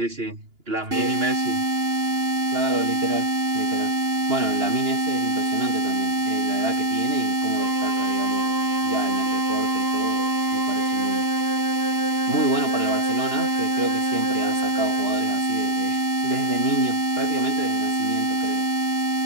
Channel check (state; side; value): late; left; 2.9 ms